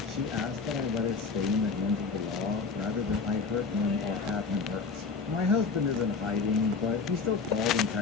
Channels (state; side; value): quieter; right; 4.7 dB